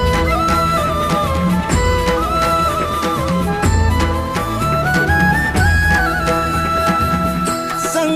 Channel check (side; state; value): both; identical; correlation 1.00